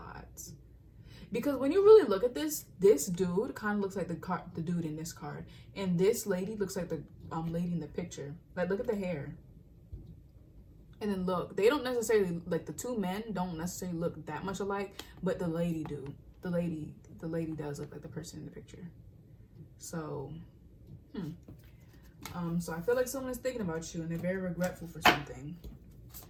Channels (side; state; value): both; identical; correlation 1.00